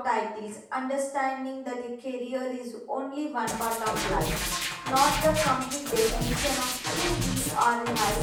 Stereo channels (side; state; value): both; identical; correlation 1.00